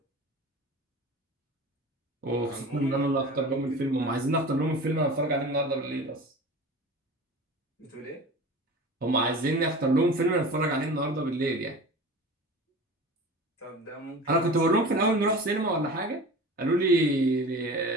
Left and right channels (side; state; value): both; normal; correlation 0.36